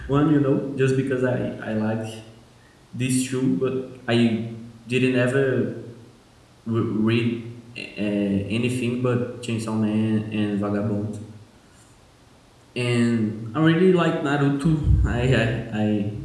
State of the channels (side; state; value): both; identical; correlation 1.00